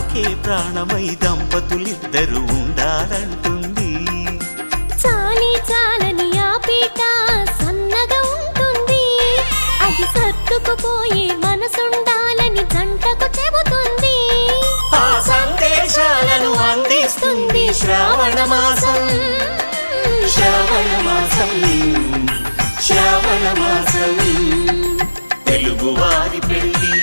ప్రాణమై దంపతులిద్దరు ఉండాలంటుంది. చాలి చాలని ఆ పీట సన్నగా ఉంటుంది, అది సర్దుకుపోయే మనసుండాలని జంటకు చెబుతుంది. ఆ సందేశాలను అందిస్తుంది శ్రావణ మాసం, శ్రావణ మాసం, శ్రావణ మాసం. తెలుగువారి పెళ్ళి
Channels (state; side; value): inverted; both; correlation -1.00